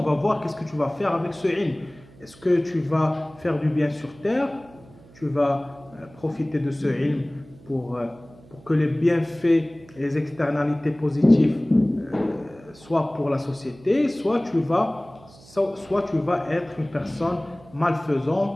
va voir qu'est-ce que tu vas faire avec ce ilm. Est-ce que tu vas faire du bien sur terre? Tu vas profiter de ce ilm pour que les bienfaits et les externalités positives soient pour la société, soit tu vas être une personne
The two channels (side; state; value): right; noise; hum, 24 dB below the sound